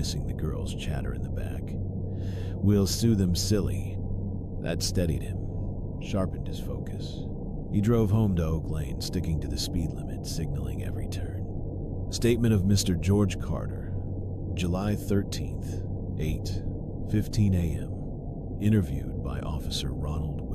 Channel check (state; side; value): identical; both; correlation 1.00